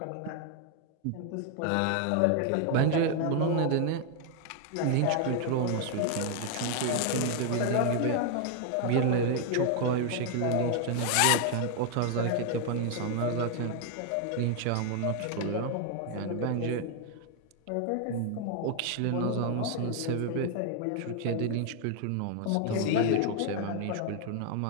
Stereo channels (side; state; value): both; different; correlation 0.00